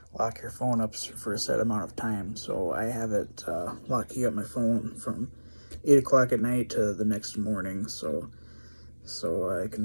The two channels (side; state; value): both; inverted; correlation -1.00